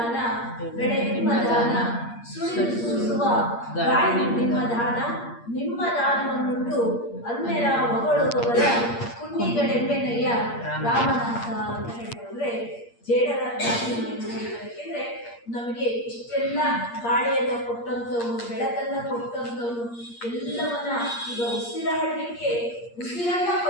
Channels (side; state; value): right; late; 8.6 ms